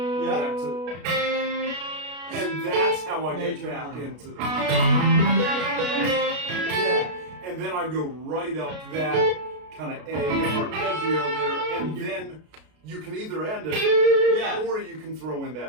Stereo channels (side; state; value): left; late; 33 ms